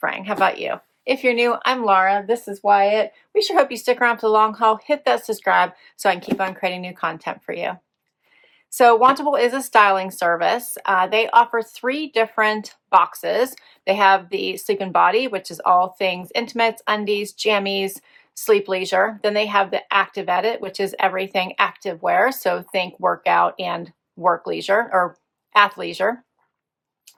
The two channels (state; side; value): identical; both; correlation 1.00